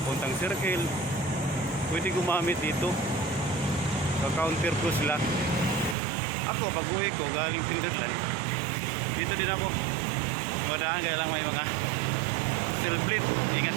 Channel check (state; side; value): drops out; left; at 6.0 s